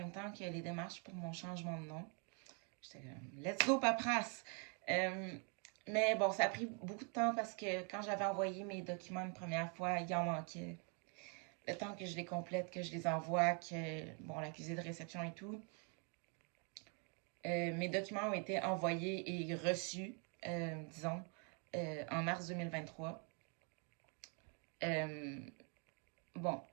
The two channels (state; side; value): quieter; left; 38.1 dB